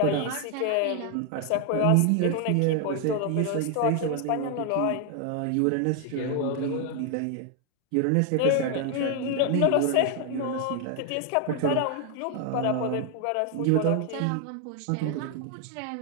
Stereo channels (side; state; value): both; different; correlation 0.00